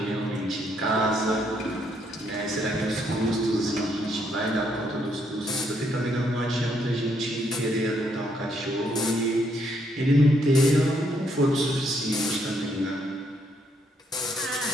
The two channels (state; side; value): normal; both; correlation 0.73